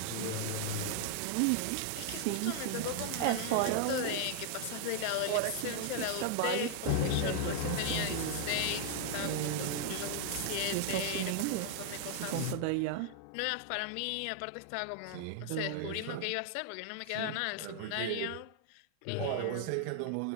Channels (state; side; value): different; both; correlation 0.00